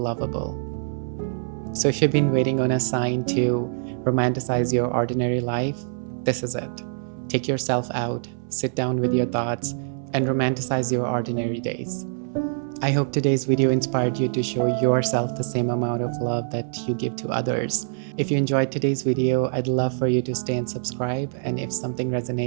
So if you've been waiting on a sign to romanticize your ordinary life, this is it. Take yourself out, sit down with your thoughts, and romanticize your ordinary days. I hope today's video inspired you to show yourself the same amount of love that you give to others. If you enjoyed today's video, I'd love for you to stay and subscribe, and if something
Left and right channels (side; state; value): left; silent; 62 dB below the other